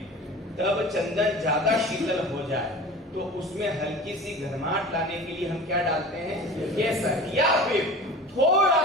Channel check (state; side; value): normal; both; correlation 0.37